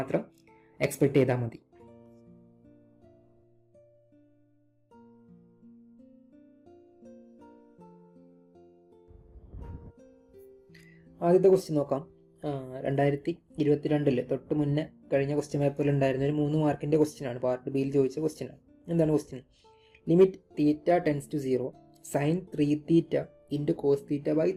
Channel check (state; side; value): identical; both; correlation 1.00